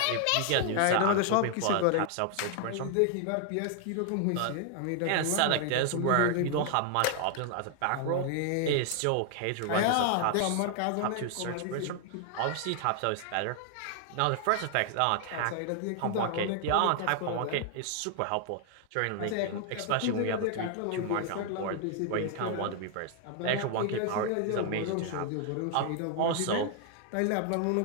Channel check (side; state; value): both; different; correlation 0.00